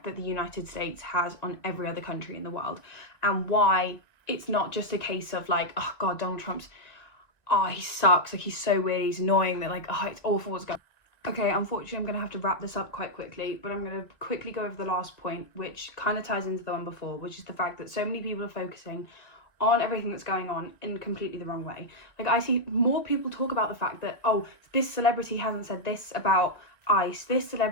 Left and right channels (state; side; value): late; right; 1.9 ms